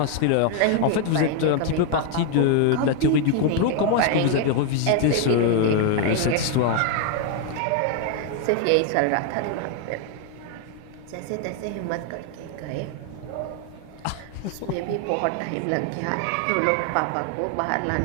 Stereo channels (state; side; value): different; both; correlation 0.01